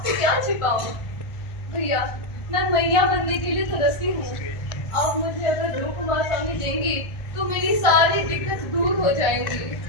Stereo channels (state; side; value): late; right; 1.3 ms